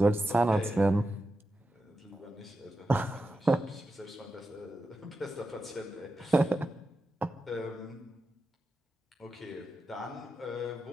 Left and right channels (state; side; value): normal; both; correlation 0.90